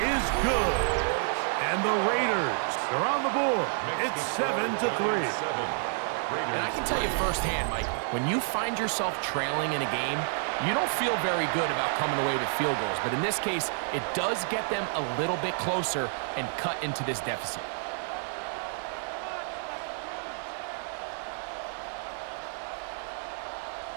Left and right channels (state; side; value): silent; left; 58 dB below the other